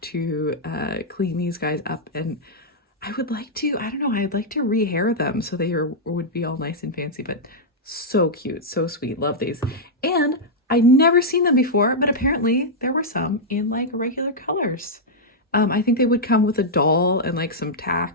to clean these guys up, and I would like to, I don't know, I'd like to rehair them so they would be all nice and fancy, but so cute, so sweet. Love these. And I'd never seen them before, but apparently there were some in like regular colors. I think they would come with a doll and like some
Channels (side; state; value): both; normal; correlation -0.07